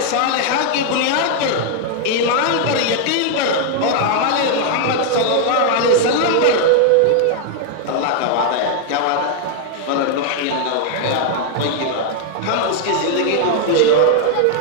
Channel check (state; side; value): different; both; correlation 0.00